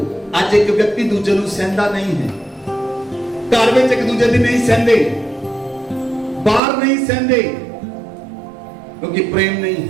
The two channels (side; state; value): left; drops out; at 6.6 s